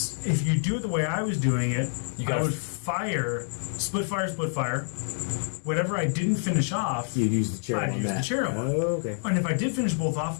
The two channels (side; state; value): right; silent; digital silence